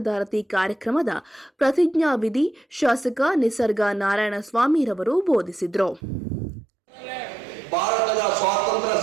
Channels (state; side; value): drops out; left; at 6.0 s